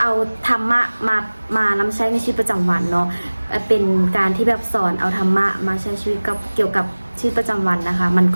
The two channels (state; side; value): inverted; both; correlation -1.00